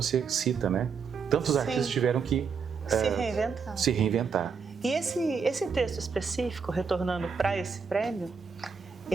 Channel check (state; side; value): quieter; left; 5.7 dB